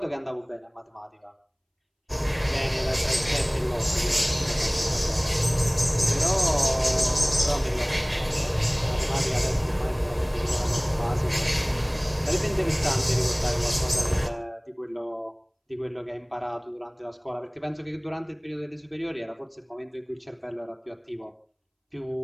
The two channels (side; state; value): both; identical; correlation 1.00